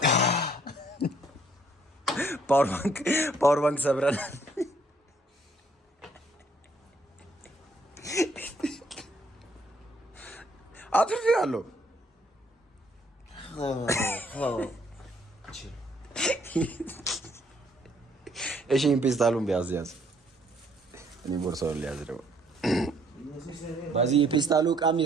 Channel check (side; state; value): both; normal; correlation 0.65